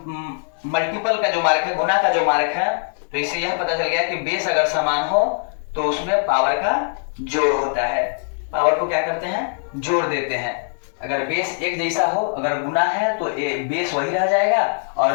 मल्टीपल का जो मार्क है, गुना का जो मार्क है, तो इससे यह पता चल गया कि बेस अगर समान हो तो उसमें पावर का जोड़ होता है। पावर को क्या करते हैं? जोड़ देते हैं। अगर बेस एक जैसा हो, अगर गुना है तो बेस वही रह जाएगा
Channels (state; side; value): silent; right; digital silence